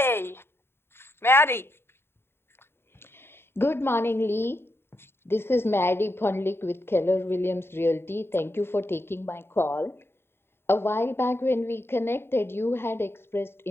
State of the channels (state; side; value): late; right; 0.11 ms